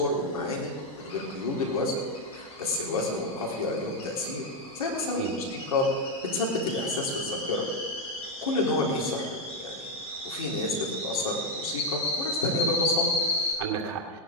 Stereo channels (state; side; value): normal; both; correlation 0.03